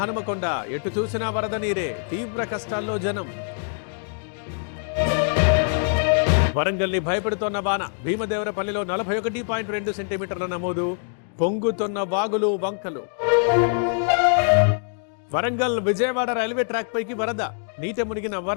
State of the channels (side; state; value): right; silent; 63 dB below the other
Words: హనుమకొండ, ఎటు చూసినా వరద నీరే, తీవ్ర కష్టాల్లో జనం. వరంగల్ని భయపెడుతోన్న వాన, భీమదేవరపల్లిలో 41.2 సెంటీమీటర్ల నమోదు, పొంగుతున్న వాగులు వంకలు. వరంగల్ విజయవాడ రైల్వే ట్రాక్ పైకి వరద, నీట మునిగిన